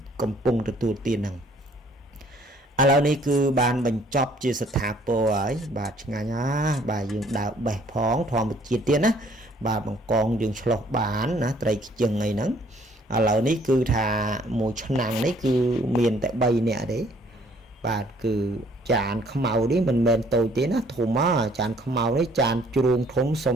កំពុងទទួលទានហ្នឹងឥឡូវនេះគឺបានបញ្ចប់ជាស្ថាពរហើយបាទឆ្ងាញ់បាទយើងដើរបេះផងធម្មជាតិទៀតណាបាទបង្កងយើងឆ្លោះបានណាត្រីខ្ជិងអីហ្នឹងឥឡូវនេះគឺថាមួយឆ្នាំងនេះគឺមានតែ3នាក់ទេបាទគឺចានខ្មៅនេះមិនមែនតូចទេណាធំចានខ្មៅនេះចានជ្រូងធំសុ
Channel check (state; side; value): normal; both; correlation 0.60